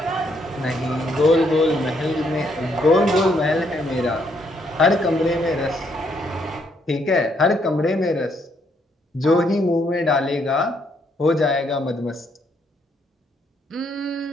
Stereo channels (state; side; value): normal; both; correlation 0.72